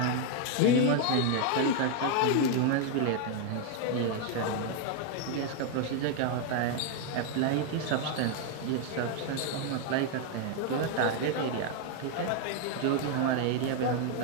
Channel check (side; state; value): both; different; correlation 0.01